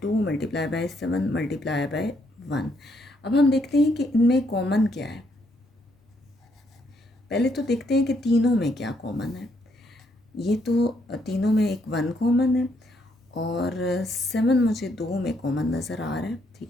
2 multiply by 7 multiply by 1। अब हम देखते हैं कि इनमें कॉमन क्या है। पहले तो देखते हैं कि तीनों में क्या कॉमन है। ये तो तीनों में एक 1 कॉमन है, और 7 मुझे 2 में कॉमन नज़र आ रहा है।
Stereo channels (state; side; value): normal; both; correlation 0.73